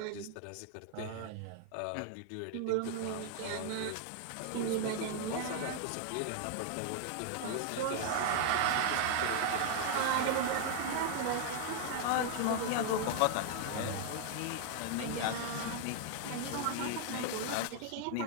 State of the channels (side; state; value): both; different; correlation 0.00